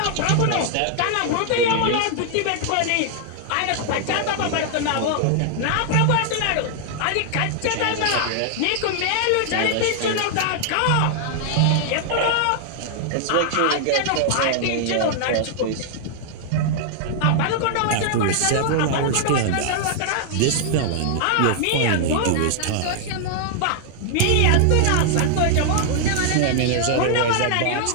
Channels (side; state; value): both; different; correlation -0.01